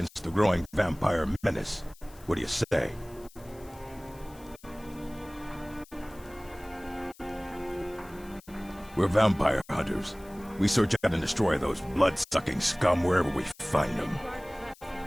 the growing vampire menace. What do you say? We're vampire hunters. We search out and destroy those blood-sucking scum wherever we find them.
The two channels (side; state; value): left; noise; hiss, 24 dB below the sound